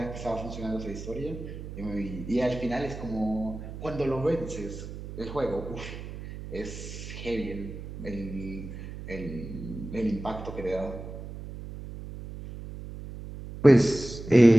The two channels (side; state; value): right; noise; hum, 10 dB below the sound